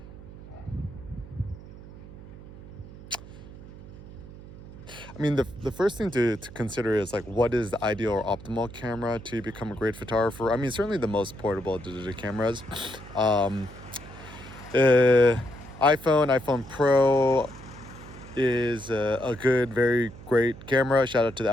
the first thing to consider is like, what is the ideal or optimal camera to become a great photographer? Certainly the most portable digital cameras. iPhone Pro is a good, very great camera. Shout out to the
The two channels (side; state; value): right; noise; hum, 16 dB below the sound